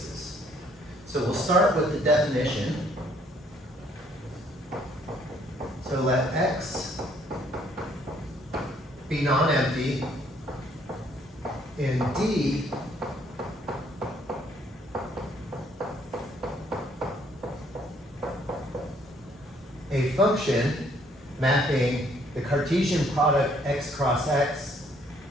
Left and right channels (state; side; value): normal; both; correlation 0.64